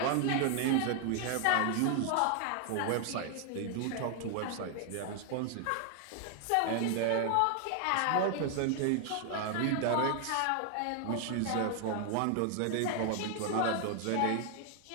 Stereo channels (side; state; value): both; different; correlation 0.00